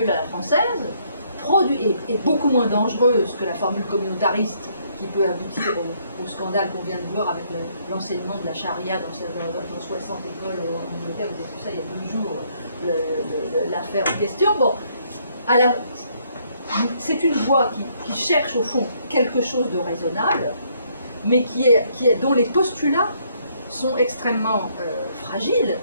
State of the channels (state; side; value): inverted; both; correlation -0.69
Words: à la française, est beaucoup moins dangereuse que la formule communautariste qui peut aboutir au scandale qu'on vient de voir avec l'enseignement de la charia dans 60 écoles en Angleterre. Vous avez vu ça il y a 2 jours, l'affaire en question. Bon, c'est une voie qui cherche au fond quelque chose de raisonnable, mais dont les postulats sont extrêmement fragiles,